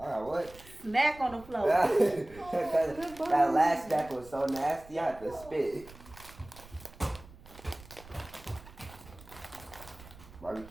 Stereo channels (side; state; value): right; noise; rumble, 20 dB below the sound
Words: got what? Snack on the floor. that last snack was so nasty, I had to spit.